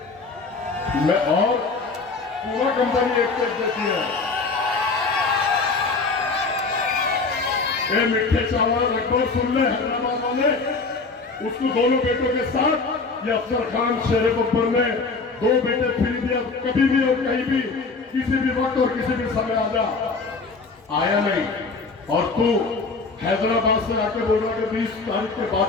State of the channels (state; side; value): quieter; right; 4.1 dB